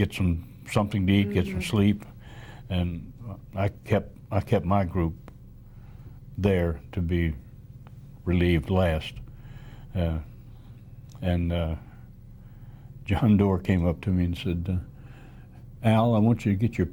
something to eat, get some sleep, and I kept my group there to be relieved last. And John Doerr came up to me and said, Al, I want you to get your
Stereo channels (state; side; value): identical; both; correlation 1.00